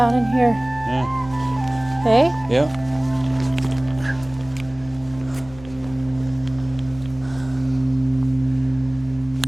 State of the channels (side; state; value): left; noise; rumble, 19 dB below the sound